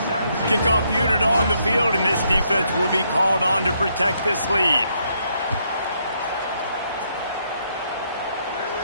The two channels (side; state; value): both; inverted; correlation -0.74